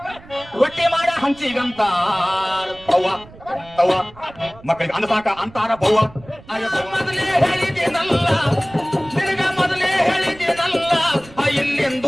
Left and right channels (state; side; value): noise; right; rumble, 21 dB below the sound